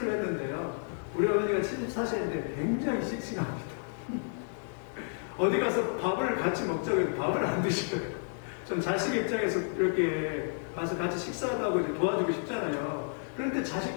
했는데요, 우리 어머니가 74세인데 굉장히 씩씩합니다. 어디 가서 밥을 같이 먹자고 해도 밥을 안 드셔요. 좀 자식 입장에서 이렇게 가서 같이 식사도 하고 이렇게 도와주고 싶잖아요. 그런데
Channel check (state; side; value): silent; right; digital silence